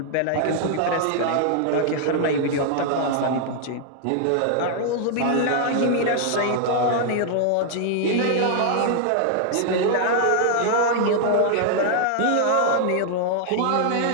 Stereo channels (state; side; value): different; both; correlation 0.00